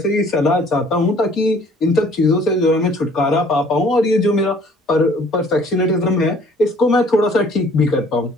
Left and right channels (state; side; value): normal; both; correlation 0.56